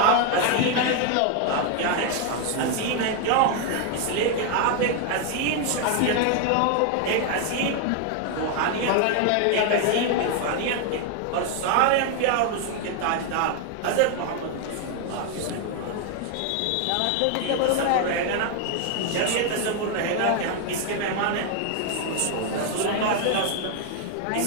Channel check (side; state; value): both; different; correlation 0.00